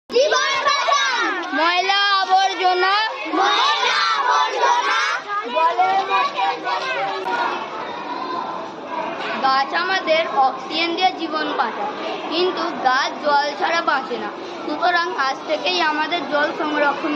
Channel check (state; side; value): identical; both; correlation 1.00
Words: ময়লা আবর্জনা গাছ আমাদের অক্সিজেন দিয়ে জীবন বাঁচায়, কিন্তু গাছ জল ছাড়া বাঁচে না। সুতরাং আজ থেকেই আমাদের জল সংরক্ষণ